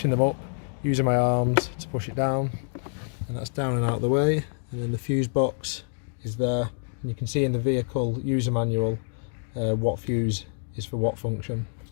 them up using my arms to push it down, and that's down and out of the way. And then the fuse box is there, and you can see in the vehicle user manual what fuse is for what function.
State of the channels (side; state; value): right; silent; 60 dB below the other